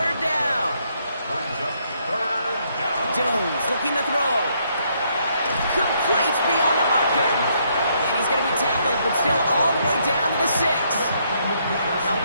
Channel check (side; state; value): both; inverted; correlation -0.72